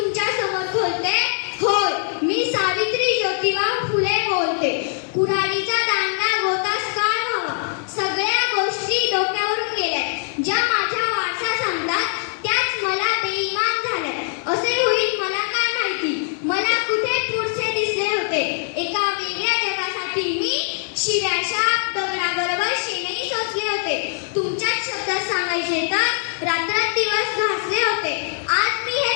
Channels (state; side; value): silent; right; 58 dB below the other